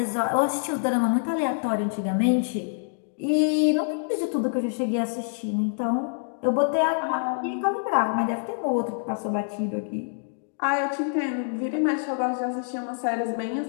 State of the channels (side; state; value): right; silent; digital silence